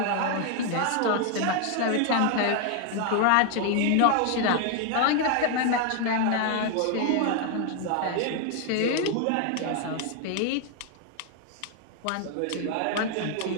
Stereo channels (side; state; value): both; different; correlation 0.00